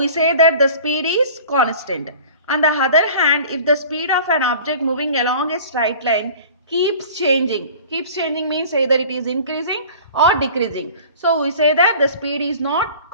say that the speed is constant. On the other hand, if the speed of an object moving along a straight line keeps changing means either it is increasing or decreasing. So we say that the speed is not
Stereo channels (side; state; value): both; inverted; correlation -0.43